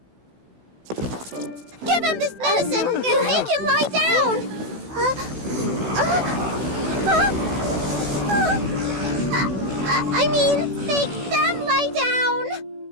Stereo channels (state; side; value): late; left; 16 ms